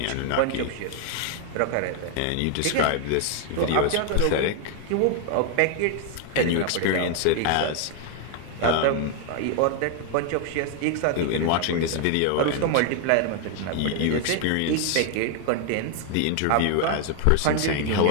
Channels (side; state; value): both; different; correlation 0.00